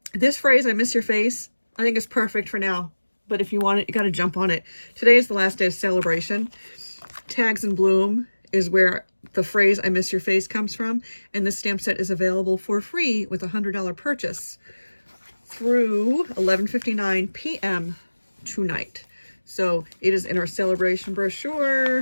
This phrase, I miss your face, I think is perfect for now, but if you want it, you got to jump on it. Today is the last day of celebration. Tags in Bloom is where the phrase I miss your face comes from, and this stamp set is available for free with a $100 purchase through 11:59 p.m. tonight. So it is in our celebration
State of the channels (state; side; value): inverted; both; correlation -1.00